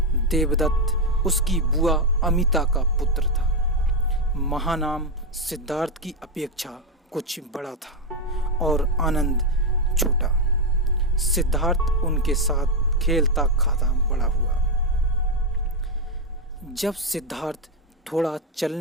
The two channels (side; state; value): both; normal; correlation 0.04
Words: देवदत्त उसकी बुआ अमिता का पुत्र था। महानाम सिद्धार्थ की अपेक्षा कुछ बड़ा था और आनंद छोटा। सिद्धार्थ उनके साथ खेलता खाता बड़ा हुआ। जब सिद्धार्थ थोड़ा